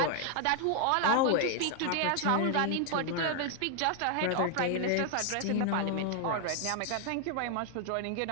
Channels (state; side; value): different; both; correlation 0.00